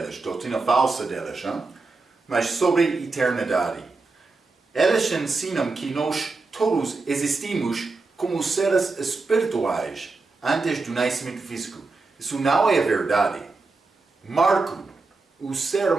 doutrina falsa deles, hein? Mas sobre eternidade. Eles ensinam que nós todos existimos como seres espirituais antes do nascimento físico. Isso não é verdade. Marco, o ser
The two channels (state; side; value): quieter; left; 3.8 dB